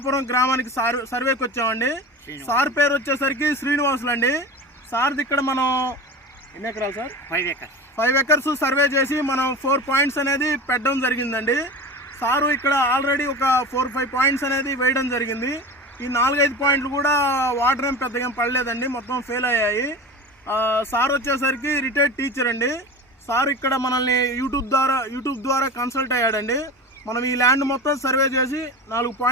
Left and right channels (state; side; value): normal; both; correlation 0.32